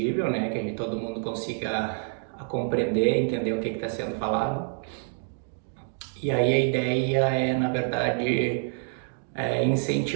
né? Que todo mundo consiga compreender, entender o que está sendo falado. E aí a ideia é, na verdade,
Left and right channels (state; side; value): silent; left; 59 dB below the other